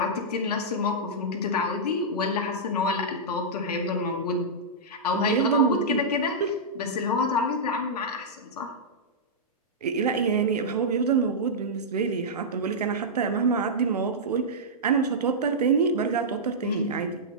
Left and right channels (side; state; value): both; normal; correlation -0.11